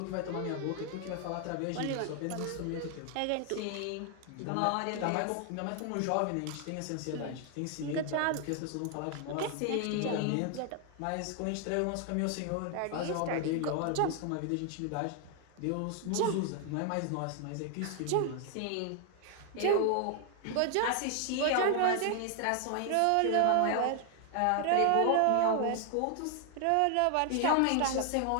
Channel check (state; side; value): different; both; correlation 0.00